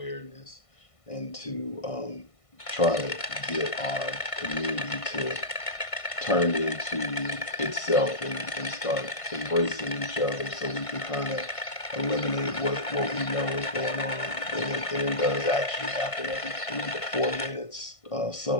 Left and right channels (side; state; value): right; late; 1.5 ms